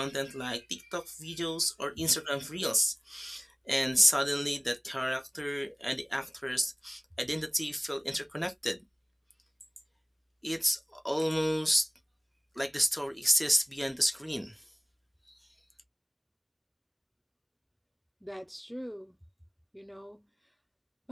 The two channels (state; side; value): identical; both; correlation 1.00